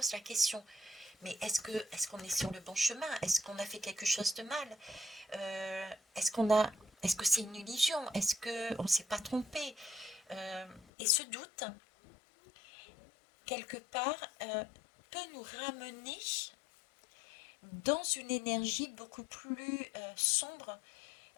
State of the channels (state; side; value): drops out; right; at 10.9 s